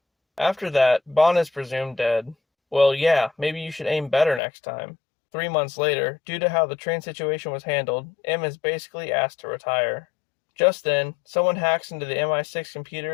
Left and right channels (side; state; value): right; drops out; at 4.4 s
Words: After that, Bond is presumed dead. Well, yeah, maybe you should aim better next time. 3 months later, due to how the train situation was handled, M is basically asked to retire. Just then, someone hacks into the MI6